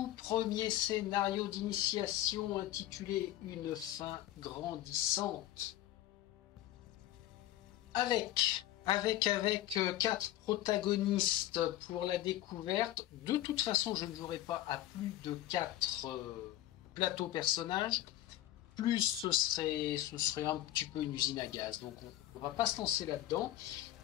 premier scénario d'initiation intitulé Une fin grandissante. Avec quatre protagonistes pour la découverte. De toute façon, je ne jouerai pas à plus de 4 plateaux personnages. Plus ce serait un petit peu une usine à gaz. Donc on va pas se lancer là-dedans.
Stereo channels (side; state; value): right; quieter; 14.0 dB